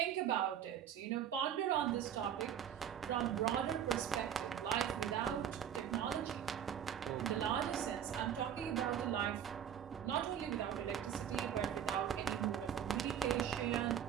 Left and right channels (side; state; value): left; quieter; 9.3 dB